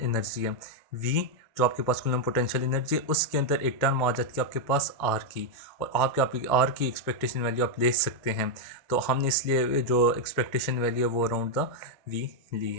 energy है। V जो आपके पास कूलम पोटेंशियल एनर्जी है उसके अंदर एक टर्म आ जाती है आपके पास R की, और आपकी R की एक्सपेक्टेशन वैल्यू आप ले सकते हैं। तो हमने इसलिए जो एक्सपेक्टेशन वैल्यू है वो अराउंड द V ली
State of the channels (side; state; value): both; normal; correlation 0.00